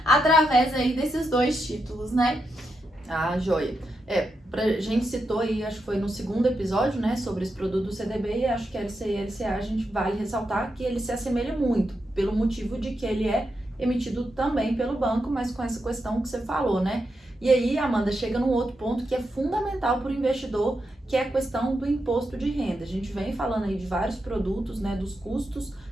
através aí desses 2 títulos, né? Joia! A gente citou aí, acho que foi no segundo episódio, né, sobre esse produto do CDB, e acho que a LCI e a LCA a gente vale ressaltar que ele se assemelha muito, pelo motivo de que ele é emitido também pelo banco, mas com essa questão que você falou, né? E aí, Amanda, chega num outro ponto que é fundamental para o investidor, que é a questão do imposto de renda. A gente vem falando aí de vários produtos, né, dos custos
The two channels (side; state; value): both; normal; correlation 0.85